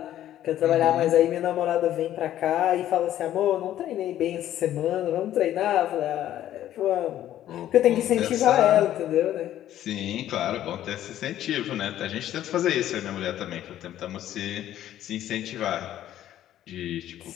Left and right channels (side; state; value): right; quieter; 12.3 dB